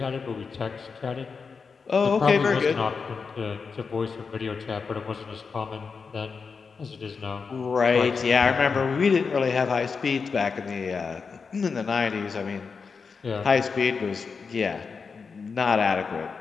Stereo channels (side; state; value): right; quieter; 5.2 dB